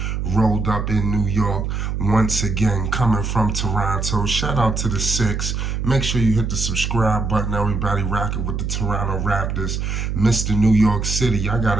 rolled up in New York once again, coming from Toronto. Shout out to the Six. Make sure you hit the subscribe button. Everybody rocking with the Toronto Raptors. Mr. New York City, y'all got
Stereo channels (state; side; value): noise; right; hum, 2 dB below the sound